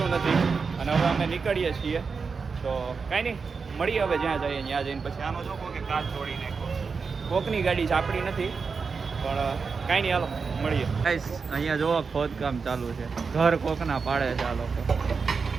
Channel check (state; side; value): quieter; left; 5.1 dB